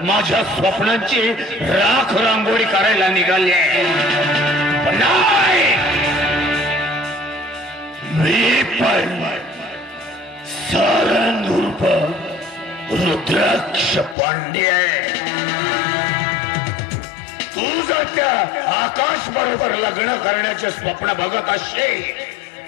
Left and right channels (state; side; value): drops out; right; at 14.2 s